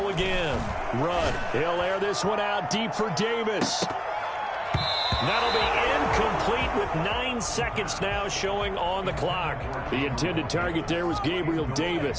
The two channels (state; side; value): identical; both; correlation 1.00